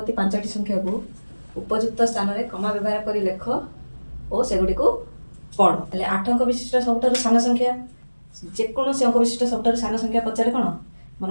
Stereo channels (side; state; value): both; inverted; correlation -1.00